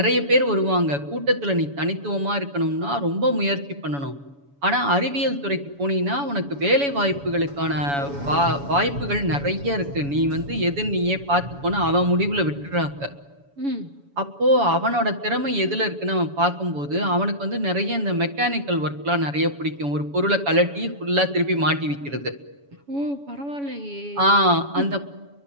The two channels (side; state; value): left; late; 7.1 ms